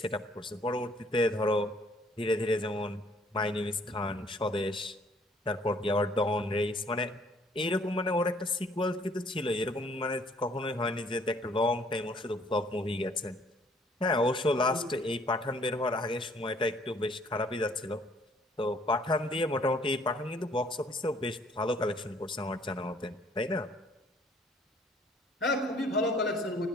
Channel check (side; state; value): both; normal; correlation 0.61